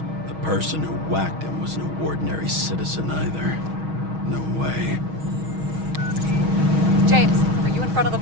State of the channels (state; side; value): late; left; 6.3 ms